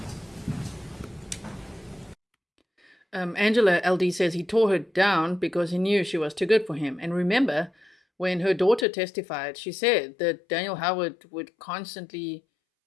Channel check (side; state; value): right; drops out; at 8.8 s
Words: Angela LD says he tore her down because he knew she was too good for him. And remember, when her daughter testified, she said that Daniel Howard would constantly,